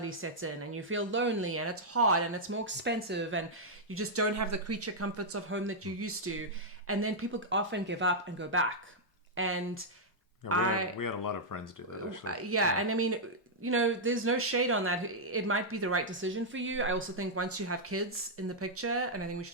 sets in and you feel lonely, and it's hard, and it's more expensive, and you just don't have the creature comforts of home that you used to. And then people often give up and go back. And Yeah, we had a lot of friends do that, actually. Yeah, and I mean, there's no shade on that. It might be the right decision for you. I also think once you have kids in the picture, and I think we should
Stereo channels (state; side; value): normal; both; correlation -0.06